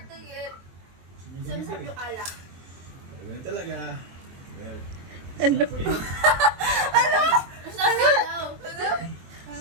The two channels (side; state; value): left; late; 23 ms